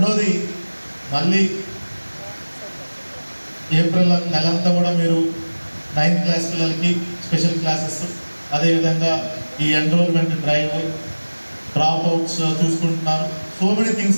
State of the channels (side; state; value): both; inverted; correlation -1.00